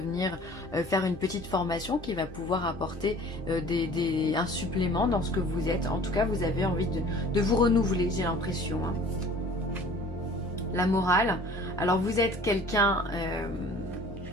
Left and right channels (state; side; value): normal; both; correlation 0.48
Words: faire une petite formation qui va pouvoir apporter un supplément dans ce que vous êtes. En tout cas, vous avez envie de vous renouveler, j'ai l'impression. Hein. La morale. Alors, vous êtes quelqu'un...